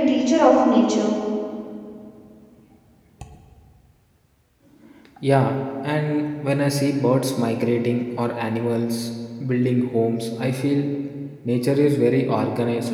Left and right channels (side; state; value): both; identical; correlation 1.00